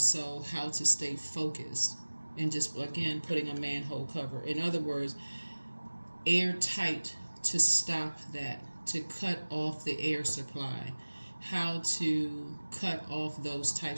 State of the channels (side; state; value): both; inverted; correlation -1.00